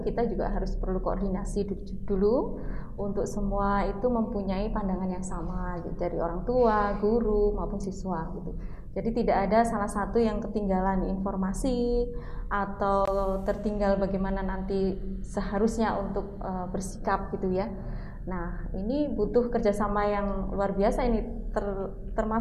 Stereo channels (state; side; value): identical; both; correlation 1.00